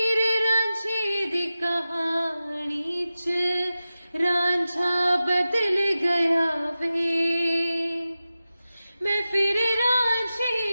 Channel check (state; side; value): inverted; both; correlation -0.94